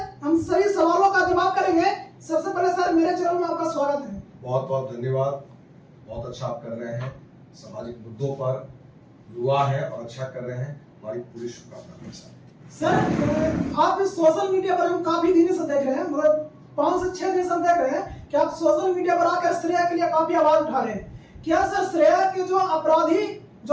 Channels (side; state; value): both; identical; correlation 1.00